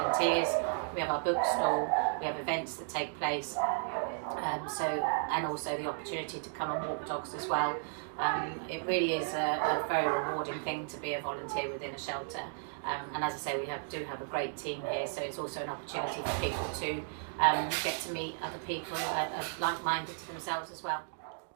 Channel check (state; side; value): silent; left; digital silence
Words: We have our bookstall, we have events that take place, and also the opportunity to come and walk dogs as well. It really is a very rewarding thing to be a volunteer within a shelter. And as I say, we do have a great team here, so it's also an opportunity for people to get to meet other people that are like-minded to themselves as well.